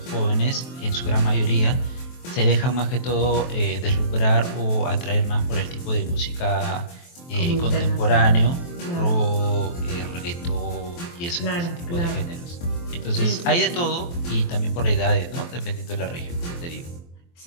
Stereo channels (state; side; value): late; right; 23 ms